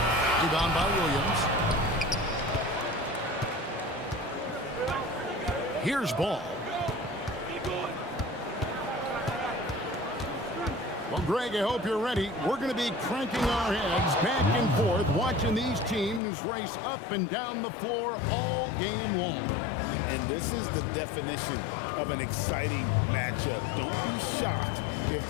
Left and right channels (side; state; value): right; drops out; at 16.2 s